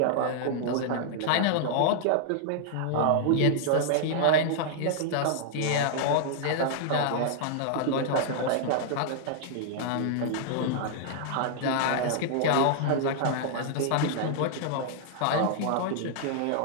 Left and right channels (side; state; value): both; different; correlation -0.01